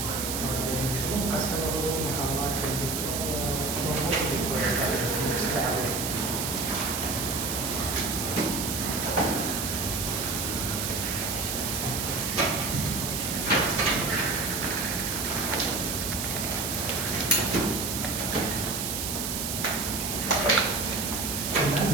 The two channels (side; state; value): right; noise; hiss, 2 dB below the sound